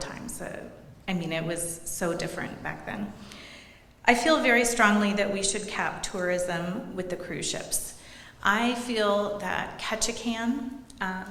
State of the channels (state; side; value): identical; both; correlation 1.00